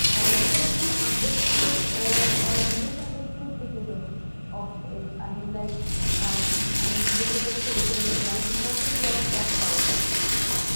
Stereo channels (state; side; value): inverted; both; correlation -1.00